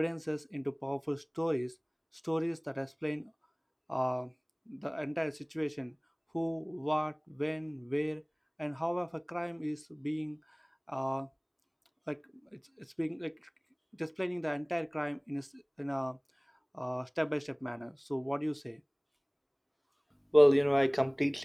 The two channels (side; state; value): both; identical; correlation 1.00